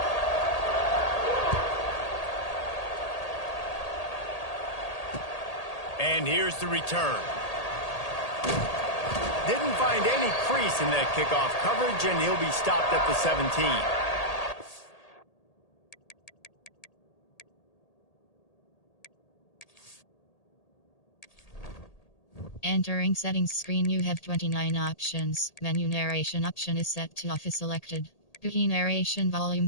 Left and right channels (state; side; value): late; right; 1.8 ms